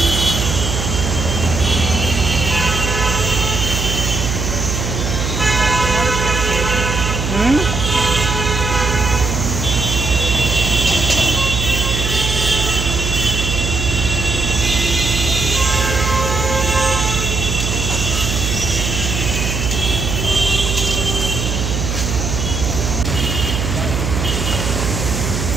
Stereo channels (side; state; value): right; noise; hum, 2 dB below the sound